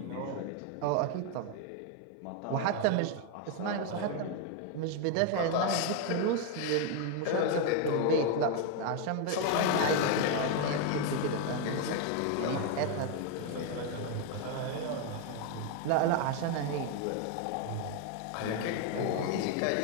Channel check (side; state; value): both; different; correlation 0.01